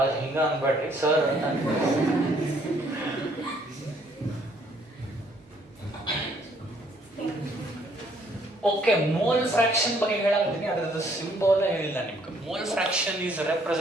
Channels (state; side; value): normal; both; correlation 0.65